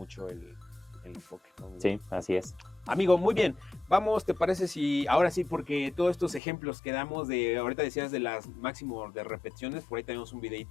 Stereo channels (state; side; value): drops out; right; at 6.4 s